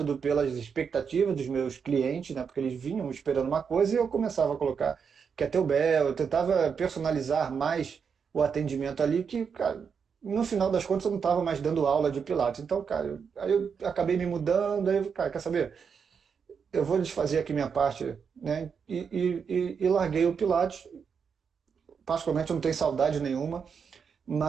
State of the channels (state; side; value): quieter; left; 6.4 dB